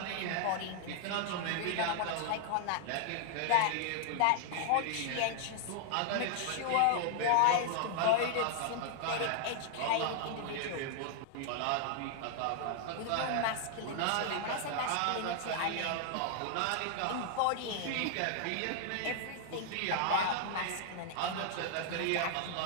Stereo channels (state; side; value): different; both; correlation 0.00